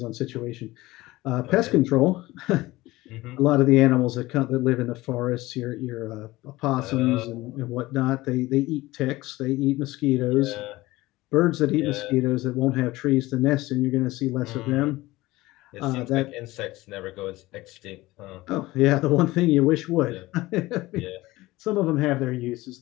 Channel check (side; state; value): right; quieter; 18.9 dB